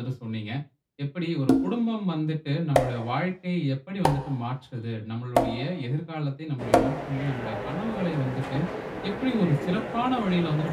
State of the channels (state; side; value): identical; both; correlation 1.00